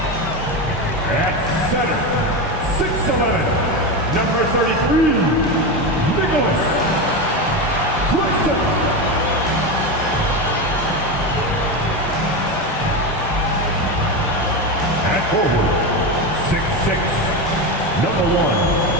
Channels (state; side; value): normal; both; correlation 0.16